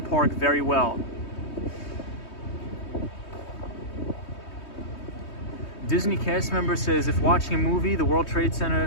Park very well. Disney cast member says, if watching a movie, the World Trade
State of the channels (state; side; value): late; right; 3.2 ms